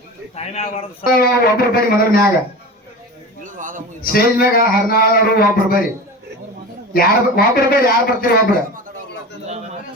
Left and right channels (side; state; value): both; normal; correlation 0.31